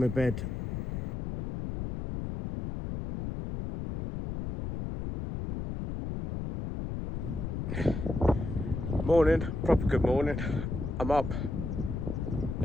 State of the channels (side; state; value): left; noise; rumble, 4 dB below the sound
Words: bed. Morning, proper good morning. I'm up.